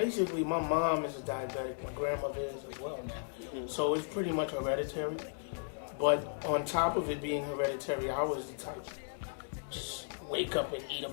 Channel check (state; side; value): silent; right; digital silence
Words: my mom is a diabetic and grandmother is as well now. So it's pretty much hereditary. But on top of it being hereditary, I was the type just wake up and eat a